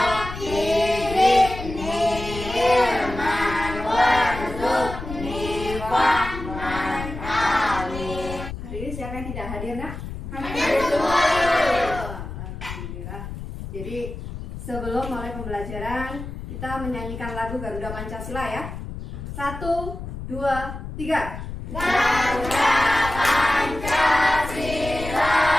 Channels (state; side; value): noise; left; rumble, 9 dB below the sound